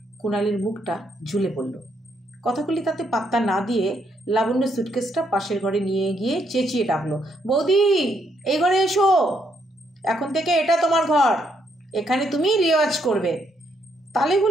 কুণালের মুখটা ঝুলে পড়ল। কথাগুলি তাতে পাত্তা না দিয়ে লাবণ্য সুটকেসটা পাশের ঘরে নিয়ে গিয়ে চেঁচিয়ে ডাকলো, বৌদি এই ঘরে এসো, এখন থেকে এটা তোমার ঘর, এখানে তুমি রেওয়াজ করবে। তালে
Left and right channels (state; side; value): normal; both; correlation 0.74